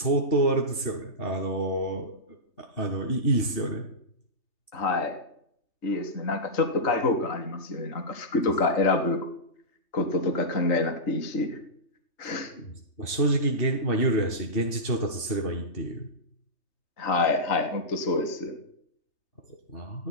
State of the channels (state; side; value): late; right; 3.3 ms